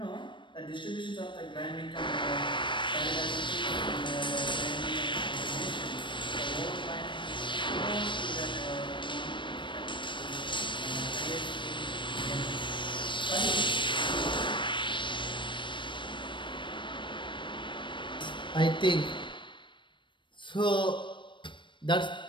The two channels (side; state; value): right; late; 0.23 ms